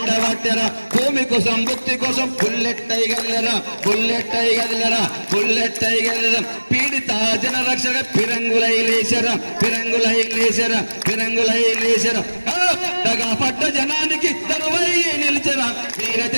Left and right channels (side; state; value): both; inverted; correlation -1.00